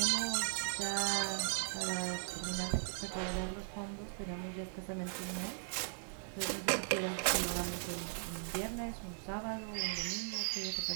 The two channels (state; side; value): silent; left; digital silence